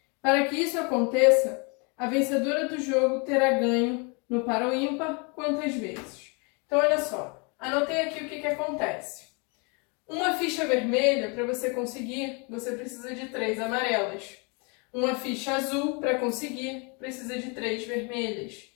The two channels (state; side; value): quieter; right; 32.6 dB